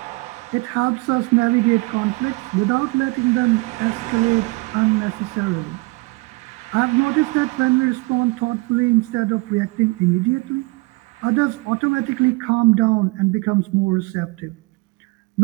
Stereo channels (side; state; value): left; quieter; 25.9 dB